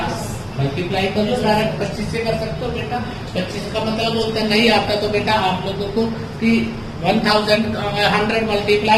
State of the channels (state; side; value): identical; both; correlation 1.00